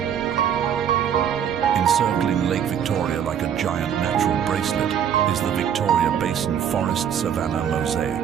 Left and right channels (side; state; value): left; quieter; 8.8 dB